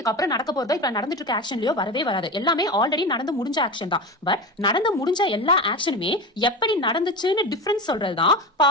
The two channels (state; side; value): normal; both; correlation 0.25